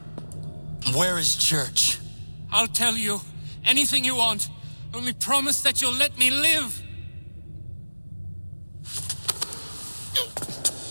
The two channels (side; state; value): both; inverted; correlation -1.00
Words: Where is Church? I'll tell you. Anything you want. Only promise that you'll let me live.